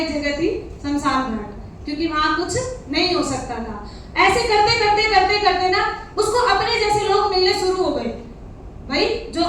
जगह थी शमशान घाट, क्योंकि वहां कुछ नहीं हो सकता था। ऐसे करते करते करते करते ना उसको अपने जैसे लोग मिलने शुरू हो गए, भाई जो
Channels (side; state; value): both; identical; correlation 1.00